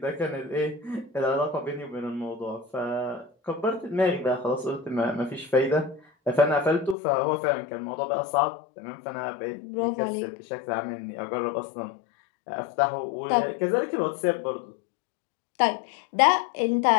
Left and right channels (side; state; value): right; drops out; at 7.0 s